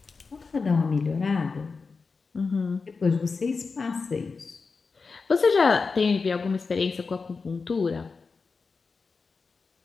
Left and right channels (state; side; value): quieter; right; 4.6 dB